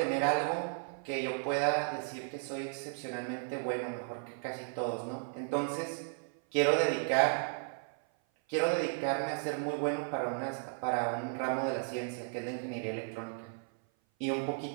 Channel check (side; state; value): left; silent; 55 dB below the other